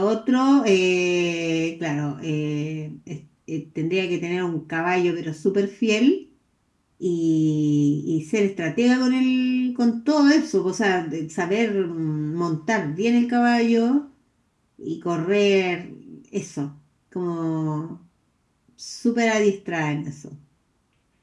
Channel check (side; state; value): both; identical; correlation 1.00